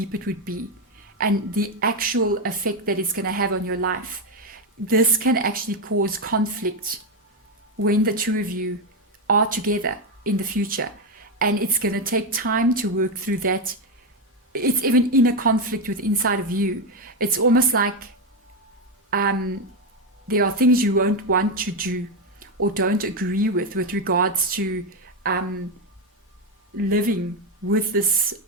it would be and the actual effect that it's going to have on your life. This can actually cause conflict when the two of you are together in the future, and it's going to take time to work through that. It's even in a conflict with inside of you. It's almost like there are things you won't want to do or don't agree with regards to living with this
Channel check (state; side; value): normal; both; correlation 0.08